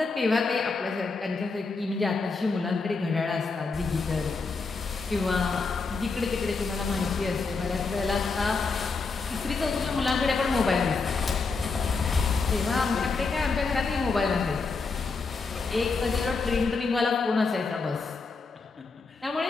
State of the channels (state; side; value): quieter; right; 4.3 dB